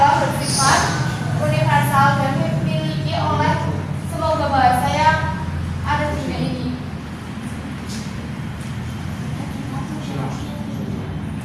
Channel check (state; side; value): identical; both; correlation 1.00